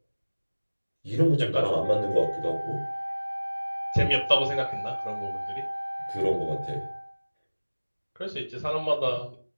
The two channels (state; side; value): inverted; both; correlation -1.00